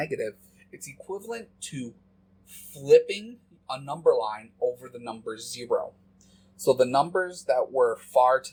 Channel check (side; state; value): both; identical; correlation 1.00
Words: it's equivalent to flipping a number line over the number 0. So the numbers that were far